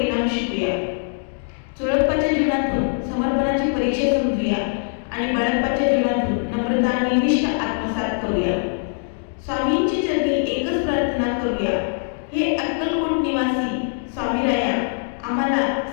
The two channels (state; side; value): silent; right; digital silence